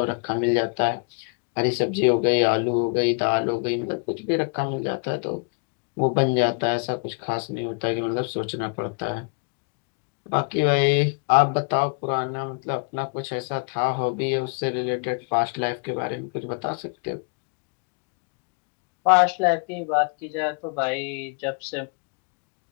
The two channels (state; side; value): quieter; right; 36.1 dB